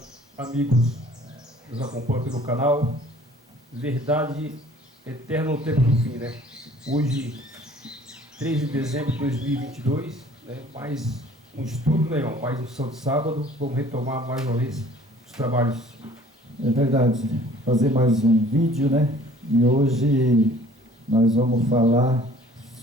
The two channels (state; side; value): normal; both; correlation 0.52